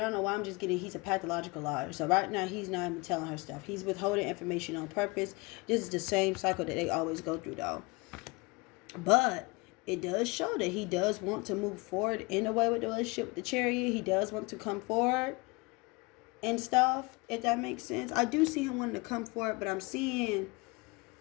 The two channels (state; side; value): quieter; right; 26.6 dB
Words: don't know why I'm just getting, he's a pathological liar. So right now he's not even telling her stuff. He's withholding information on purpose. This is the same cycle that they always go through though. But it does show that he does want to move forward in a way with the relationship with the Chariot. He does want to come forward and stuff, if that makes sense. I do see him wanting to come forward, but I'm seeing